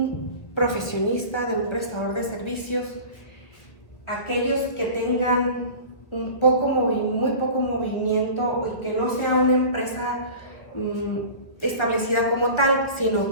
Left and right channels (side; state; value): right; late; 1.7 ms